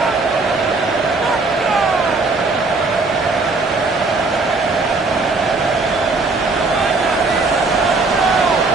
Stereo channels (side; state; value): left; quieter; 3.7 dB